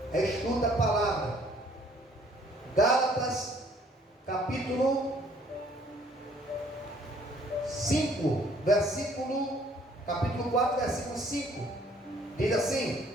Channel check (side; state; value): both; normal; correlation 0.60